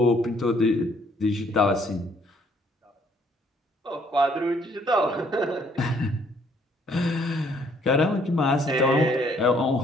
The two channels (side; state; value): both; normal; correlation 0.64